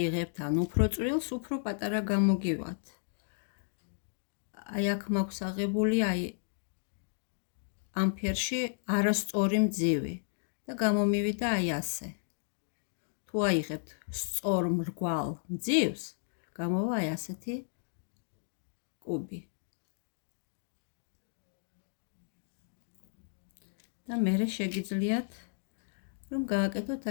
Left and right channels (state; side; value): silent; right; digital silence